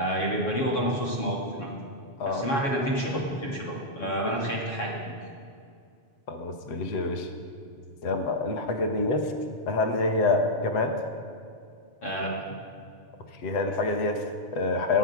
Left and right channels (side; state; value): right; late; 7.2 ms